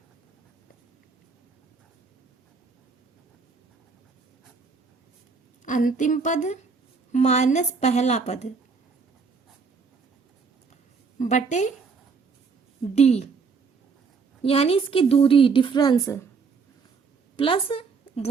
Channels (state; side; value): quieter; left; 5.1 dB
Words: पद माइनस पहला पद बटे डी, यानी इसकी दूरी डिफरेंस प्लस